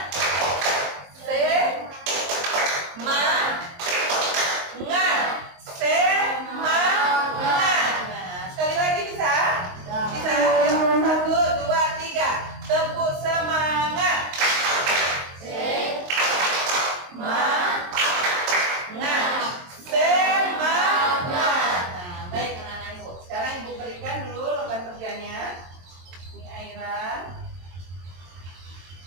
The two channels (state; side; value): late; left; 22 ms